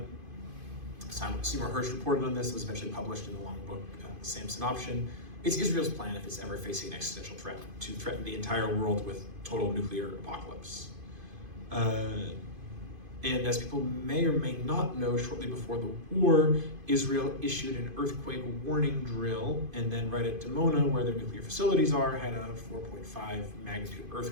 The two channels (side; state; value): left; late; 2.5 ms